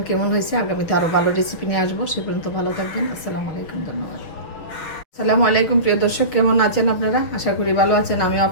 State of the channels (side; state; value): right; late; 6.1 ms